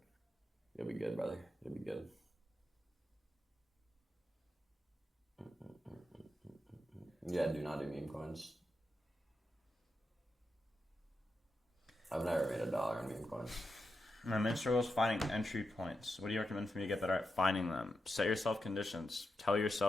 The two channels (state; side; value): normal; both; correlation 0.87